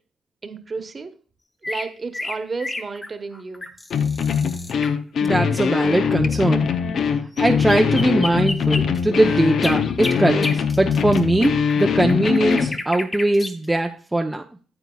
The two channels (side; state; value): both; normal; correlation 0.87